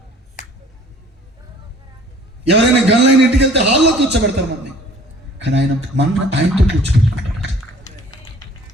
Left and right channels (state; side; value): normal; both; correlation 0.52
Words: ఎవరైనా గన్లైన ఇంటికి వెళ్తే హాల్లో కూర్చోబెడతారు మనల్ని, కానీ ఆయనతో కూర్చోబెట్టుకుంటాడు.